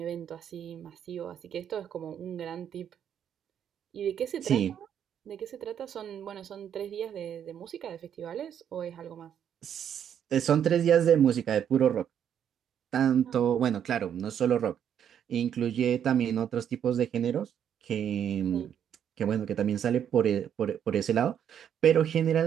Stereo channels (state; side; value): quieter; left; 9.0 dB